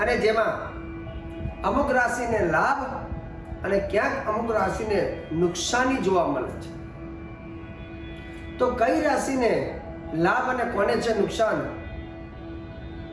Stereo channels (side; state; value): both; identical; correlation 1.00